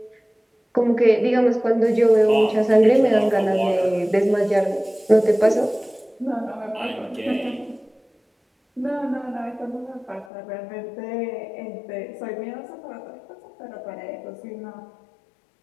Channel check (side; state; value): right; drops out; at 10.2 s